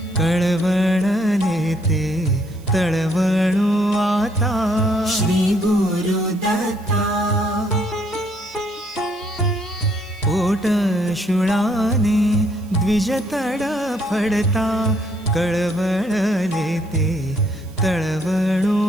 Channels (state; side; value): noise; right; hiss, 27 dB below the sound